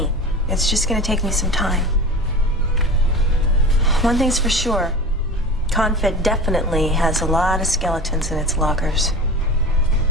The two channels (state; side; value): normal; both; correlation 0.33